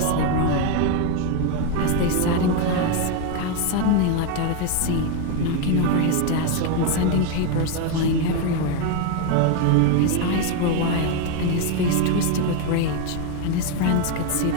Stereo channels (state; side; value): different; both; correlation 0.02